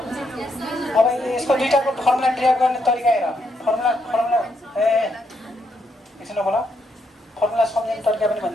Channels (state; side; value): normal; both; correlation 0.77